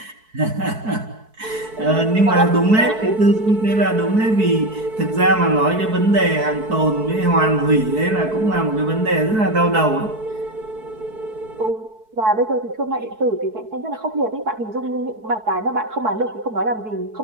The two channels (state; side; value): late; left; 4.6 ms